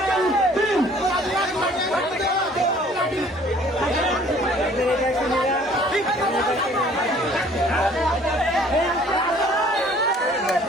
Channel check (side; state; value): both; normal; correlation 0.55